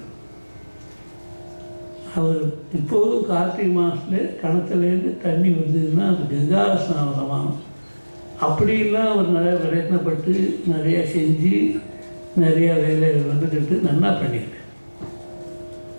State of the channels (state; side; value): inverted; both; correlation -1.00